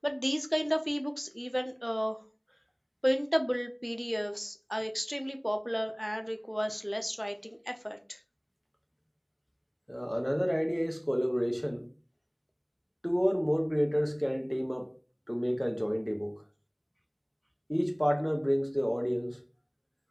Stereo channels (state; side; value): identical; both; correlation 1.00